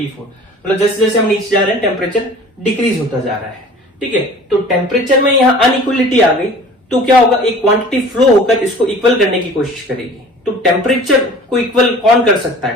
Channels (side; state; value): both; normal; correlation 0.45